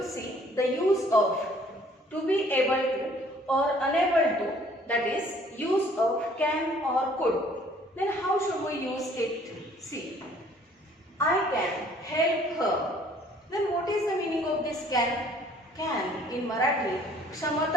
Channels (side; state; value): both; normal; correlation 0.57